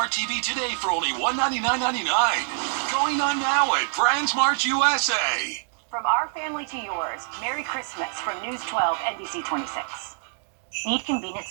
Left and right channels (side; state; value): left; silent; digital silence